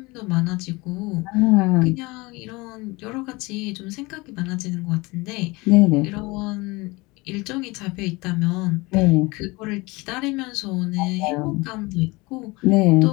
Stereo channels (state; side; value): quieter; right; 23.8 dB